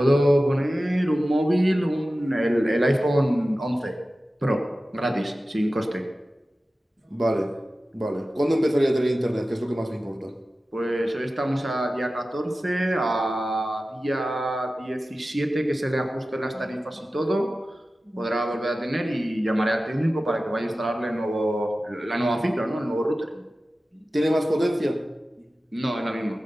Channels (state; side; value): normal; both; correlation 0.95